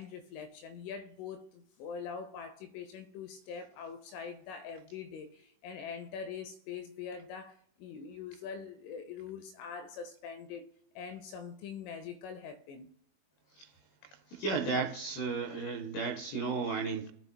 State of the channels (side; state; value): right; late; 22 ms